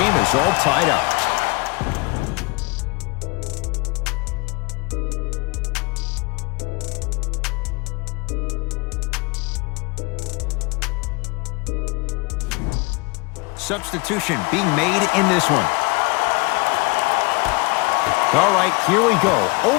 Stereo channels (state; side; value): quieter; right; 26.5 dB